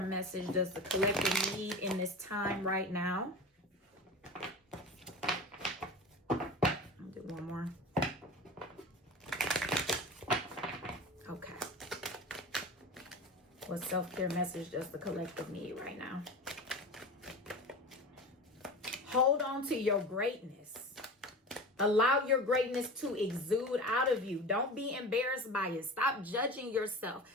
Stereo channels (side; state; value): both; normal; correlation 0.31